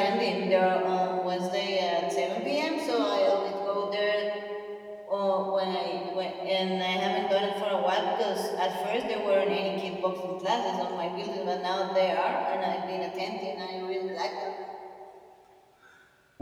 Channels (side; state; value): both; identical; correlation 1.00